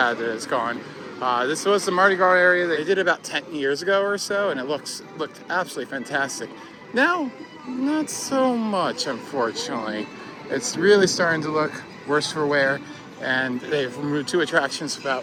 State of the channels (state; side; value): identical; both; correlation 1.00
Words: that it's gone. This was the Mardi Gras area that they did about 10 years ago or so, and it looked absolutely fantastic. Now, not so much, unfortunately. It's really starting to look worse for wear, and they've removed 2 attractions without